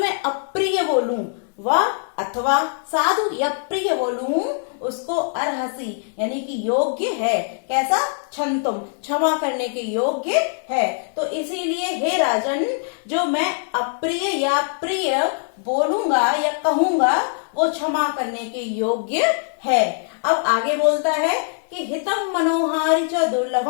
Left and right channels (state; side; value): silent; right; 64 dB below the other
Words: अप्रिय बोलूं, व अथवा साधु या प्रिय बोलूं, उसको अर्हसि यानी कि योग्य है। कैसा? क्षन्तुम क्षमा करने के योग्य है। तो इसीलिए हे राजन, जो मैं अप्रिय या प्रिय बोलूंगा या कहूंगा, वो क्षमा करने के योग्य है। अब आगे बोलता है कि हितम मनोहारी च